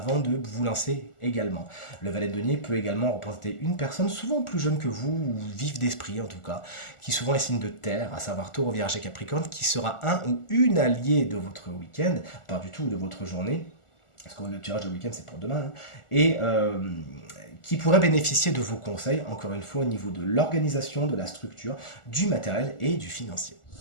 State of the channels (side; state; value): right; late; 1.4 ms